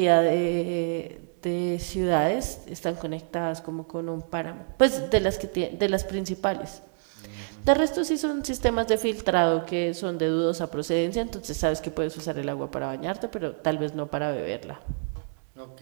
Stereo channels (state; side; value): silent; left; 58 dB below the other